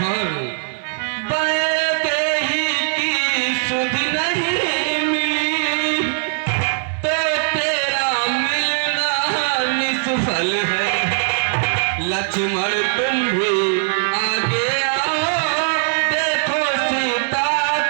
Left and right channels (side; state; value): left; silent; 64 dB below the other